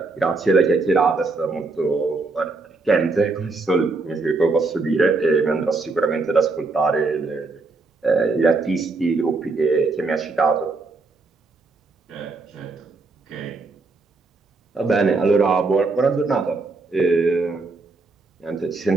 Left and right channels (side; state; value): left; quieter; 3.7 dB